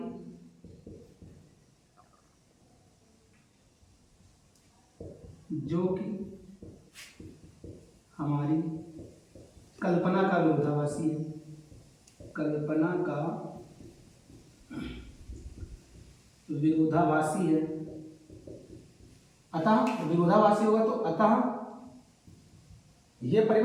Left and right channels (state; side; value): identical; both; correlation 1.00